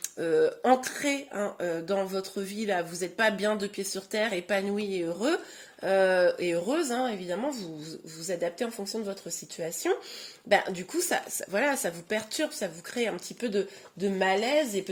ancré hein, dans votre vie, là, vous n'êtes pas bien de pied sur terre, épanoui et heureux, et heureuse, hein, évidemment, vous vous adaptez en fonction de votre situation. Ben, du coup, voilà, ça vous perturbe, ça vous crée un petit peu de malaise, et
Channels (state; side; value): identical; both; correlation 1.00